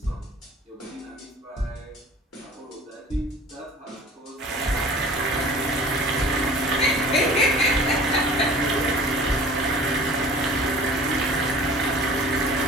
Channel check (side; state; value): both; normal; correlation 0.45